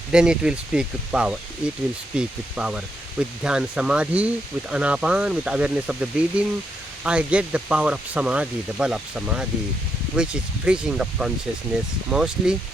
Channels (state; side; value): normal; both; correlation 0.80